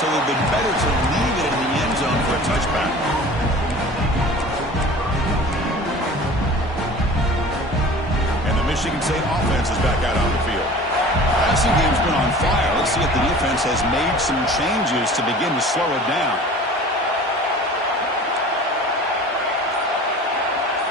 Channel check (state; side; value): normal; both; correlation 0.42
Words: it would have been better to leave it in the end zone for a touchback. And the Michigan State offense is back out on the field. Passing game's been on fire. Let's see if the defense has made some changes to begin to slow it down.